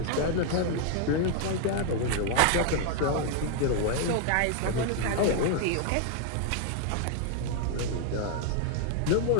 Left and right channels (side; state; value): both; different; correlation 0.00